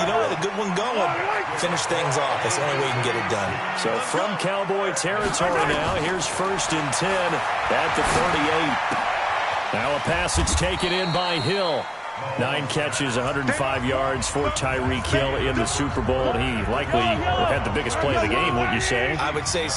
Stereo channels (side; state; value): both; identical; correlation 1.00